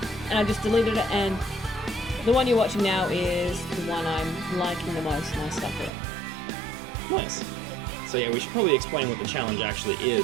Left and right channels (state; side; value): drops out; left; at 5.9 s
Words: And I just deleted it. And the one you're watching now is the one I'm liking the most, and I stuck with it. Nice. So yeah, we should probably explain what the challenge actually